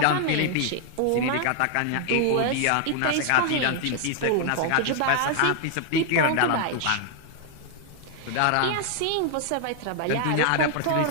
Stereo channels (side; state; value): both; different; correlation 0.00